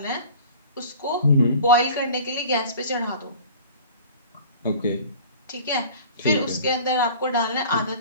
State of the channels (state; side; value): inverted; both; correlation -0.43